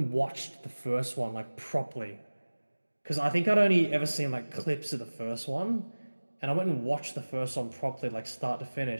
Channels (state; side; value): inverted; both; correlation -1.00